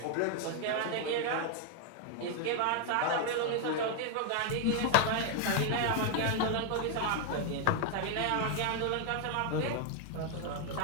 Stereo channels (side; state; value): both; different; correlation 0.00